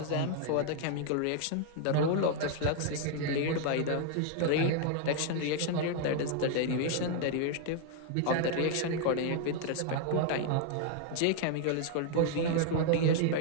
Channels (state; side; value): different; both; correlation 0.00